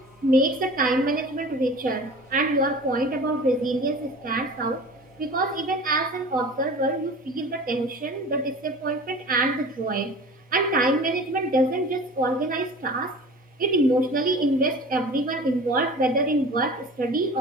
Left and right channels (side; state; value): both; normal; correlation 0.40